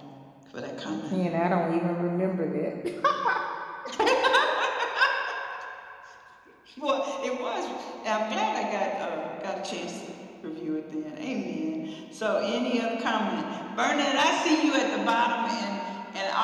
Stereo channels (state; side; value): identical; both; correlation 1.00